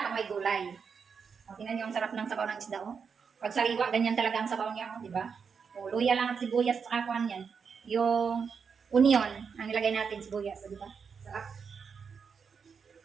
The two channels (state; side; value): quieter; left; 6.1 dB